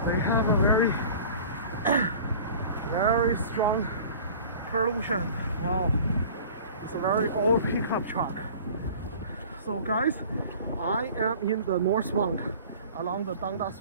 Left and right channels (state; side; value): inverted; both; correlation -0.44